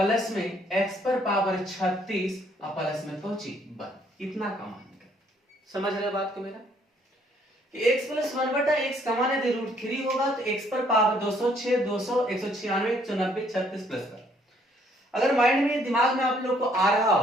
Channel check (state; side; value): normal; both; correlation 0.65